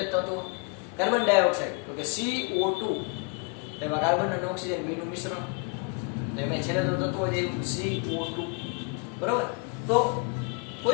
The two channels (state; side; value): quieter; right; 32.5 dB